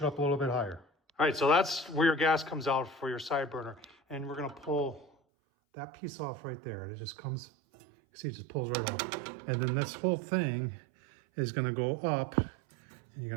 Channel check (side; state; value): left; drops out; at 5.1 s